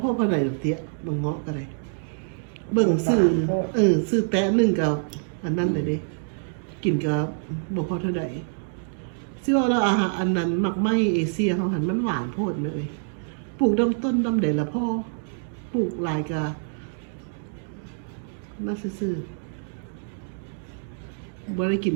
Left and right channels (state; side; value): silent; left; digital silence